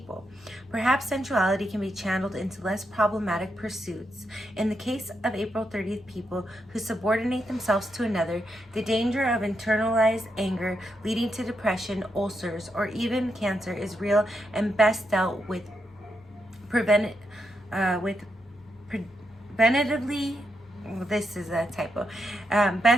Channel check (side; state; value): both; normal; correlation 0.82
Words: Perhaps sensuality can be channeled into less problematic pursuits. In the case of April 30th people who subordinate themselves to another, the danger of internalized anger leading to depression, ulcers, or even cancer is real and best dealt with preventatively. This is a typo.